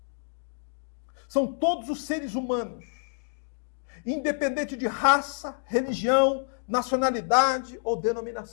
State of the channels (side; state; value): right; silent; digital silence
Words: São todos os seres humanos, independente de raça, religião, nacionalidade ou